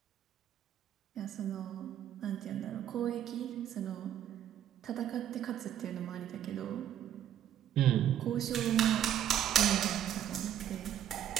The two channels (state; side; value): quieter; left; 10.6 dB